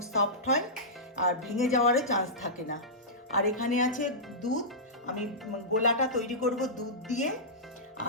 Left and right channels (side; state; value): both; normal; correlation -0.15